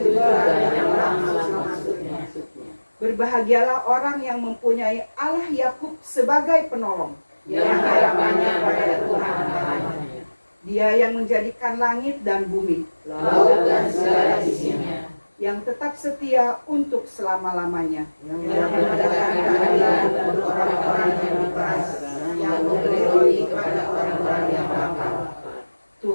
itu juga nyawa maksudnya. Berbahagialah orang yang mempunyai Allah Yakub sebagai penolong, yang harapannya pada Tuhan Allahnya. Dia yang menjadikan langit dan bumi, laut dan segala isinya, yang tetap setia untuk selama-lamanya, yang menegakkan keadilan untuk orang-orang yang diperas, yang memberi roti kepada orang-orang yang lapar.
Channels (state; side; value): inverted; both; correlation -1.00